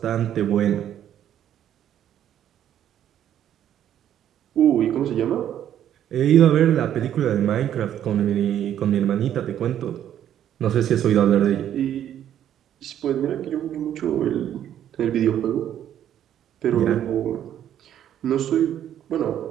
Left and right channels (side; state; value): left; quieter; 10.6 dB